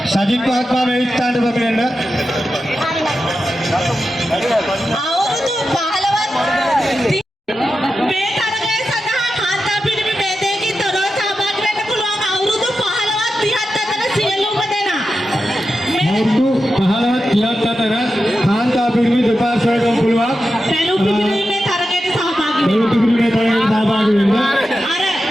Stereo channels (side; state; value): both; normal; correlation 0.90